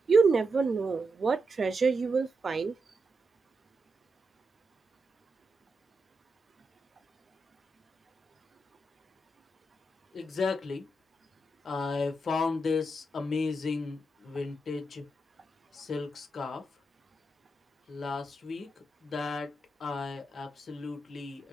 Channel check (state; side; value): normal; both; correlation 0.86